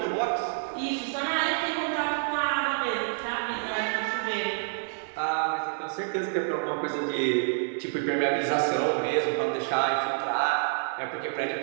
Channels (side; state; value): left; silent; digital silence